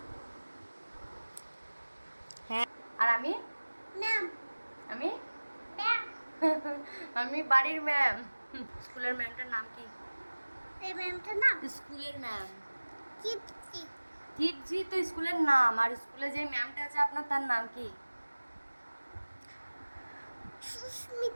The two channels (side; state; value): both; inverted; correlation -1.00